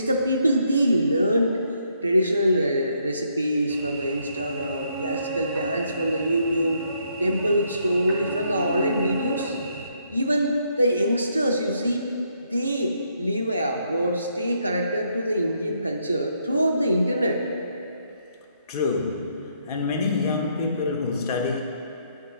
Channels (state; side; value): inverted; both; correlation -0.73